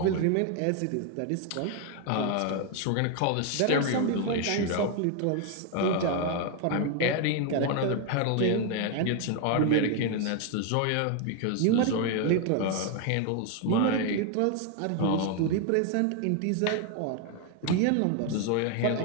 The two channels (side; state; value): both; different; correlation 0.01